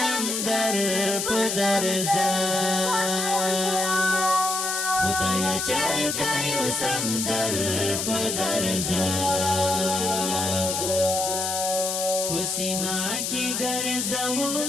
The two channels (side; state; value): left; noise; hiss, 1 dB below the sound